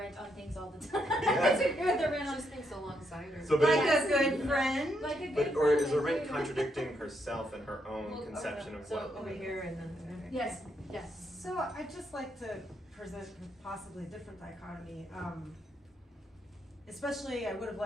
on things all the time. Yeah. I disagree with Arendt on Just thinks alongside her. So, like a good friend. Like a good But or is friend, Arendt contradicting herself and her own conception of what? over here and then Yes. Yes. So I'd just like to present possibly a different dichotomy. Especially, I would have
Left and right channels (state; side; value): normal; both; correlation 0.77